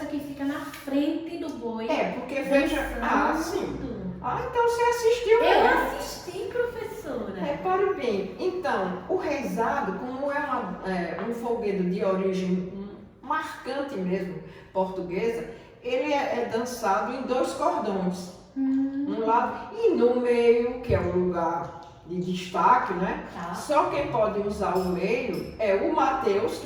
que fica na frente do boi. Porque veja... sim. Então você assistiu, né? Eu né? assisti, professora. Repare bem, então, o reisado, como é um folguedo de origem marcante mesmo, portuguesa, ele é dançado em dois cordões. Um lado e no meio, que é o lugar de destaque, né? Só quem pode usar o meio é o Mateus,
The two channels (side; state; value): both; identical; correlation 1.00